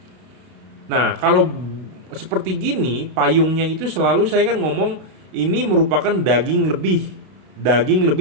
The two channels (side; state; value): left; late; 32 ms